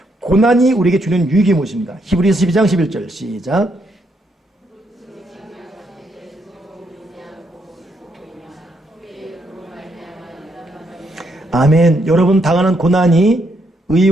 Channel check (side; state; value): both; normal; correlation 0.76